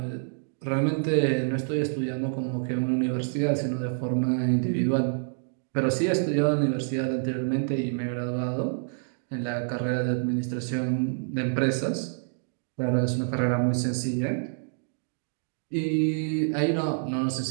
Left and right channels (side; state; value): left; silent; digital silence